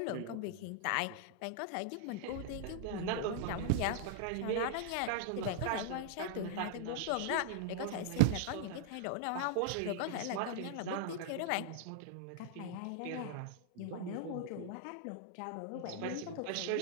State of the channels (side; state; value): both; different; correlation 0.00